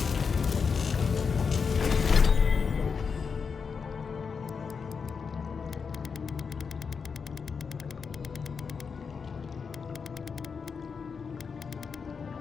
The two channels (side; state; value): right; quieter; 5.7 dB